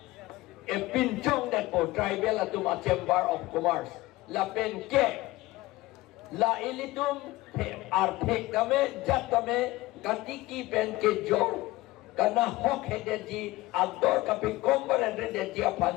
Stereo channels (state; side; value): quieter; right; 18.8 dB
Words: pincong dat po tribal atum a Chamber of Commerce la penke la ilitum arthek kame jat kame katiki penke jor karena hok hedeji ador kapi kombar hedeji